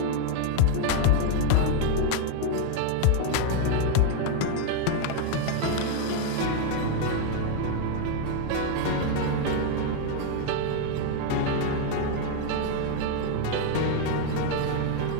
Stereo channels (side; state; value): both; different; correlation 0.01